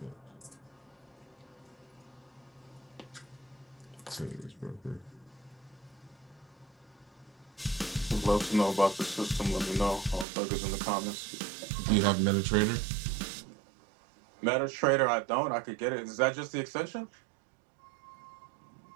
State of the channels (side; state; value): left; drops out; at 10.2 s